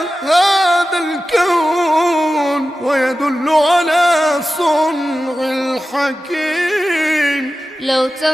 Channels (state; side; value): normal; both; correlation 0.94